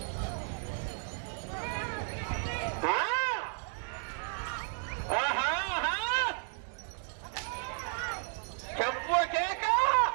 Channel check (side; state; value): left; silent; 55 dB below the other